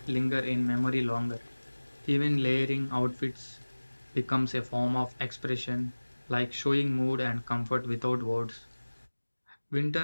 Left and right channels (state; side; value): inverted; both; correlation -1.00